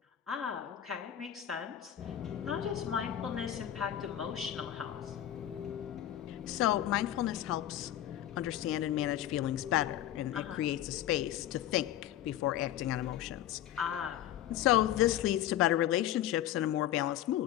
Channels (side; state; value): right; quieter; 12.0 dB